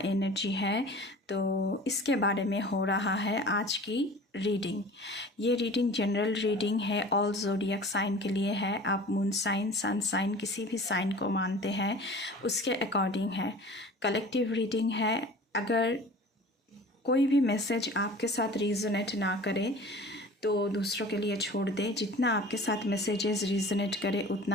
एनर्जी है। तो इसके बारे में हो रहा है आज की रीडिंग। ये रीडिंग जनरल रीडिंग है, ऑल ज़ोडिएक साइन के लिए है। आप मून साइन, सन साइन, किसी भी साइन को मानते हैं उसके अकॉर्डिंग है। कलेक्टिव रीडिंग है। अगर कोई भी मैसेज आपके साथ रीजनेट ना करे तो दूसरों के लिए छोड़ दें। जितना आपके साथ मैसेजेस रीजनेट करे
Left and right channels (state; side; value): normal; both; correlation 0.42